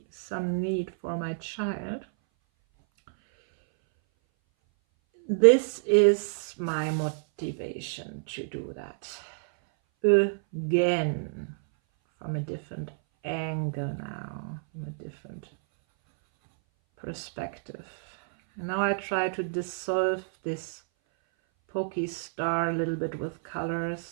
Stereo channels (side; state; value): left; silent; 58 dB below the other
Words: some need for my child, this is my motivation to do that. Again, from a different angle now, from a different perspective. And now I try to dissolve this pokey star a little bit with